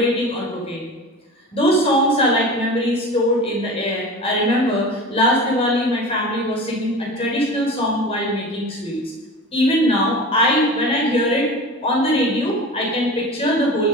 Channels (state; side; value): normal; both; correlation 0.34